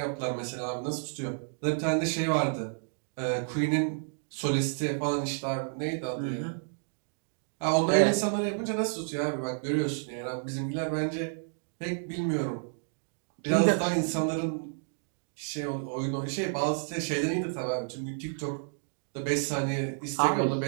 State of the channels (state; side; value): silent; left; digital silence